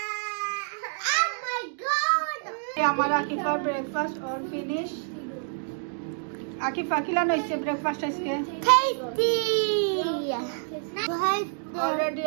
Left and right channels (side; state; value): left; silent; digital silence